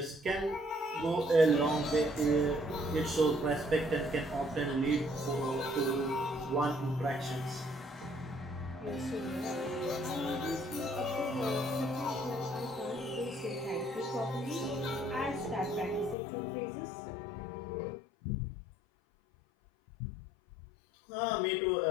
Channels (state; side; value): drops out; right; at 16.2 s